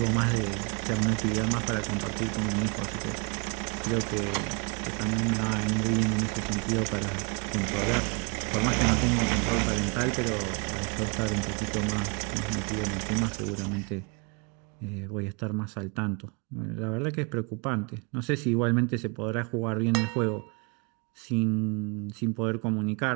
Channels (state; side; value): quieter; left; 32.8 dB